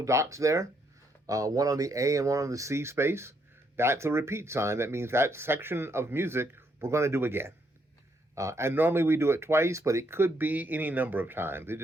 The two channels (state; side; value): normal; both; correlation 0.74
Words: dots there, one on the A and one on the C space. That's a repeat sign. That means that section of music we're going to do again. And normally we do it twice, but it could be any number of times. It